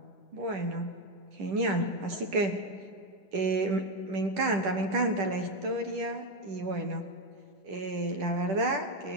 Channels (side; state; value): left; late; 10 ms